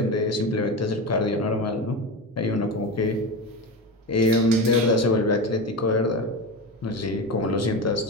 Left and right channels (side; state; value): both; normal; correlation 0.22